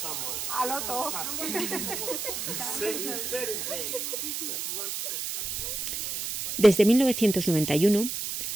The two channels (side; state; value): right; noise; hiss, 3 dB below the sound